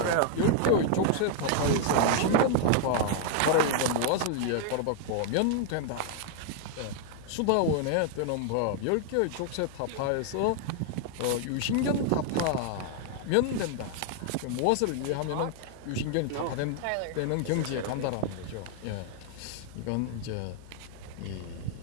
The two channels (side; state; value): both; different; correlation 0.00